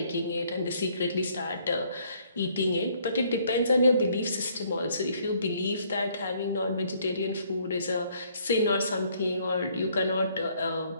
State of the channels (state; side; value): inverted; both; correlation -0.65